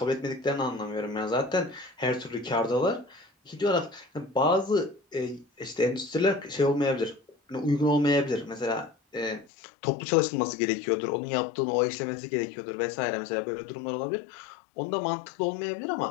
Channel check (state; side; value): drops out; right; at 9.5 s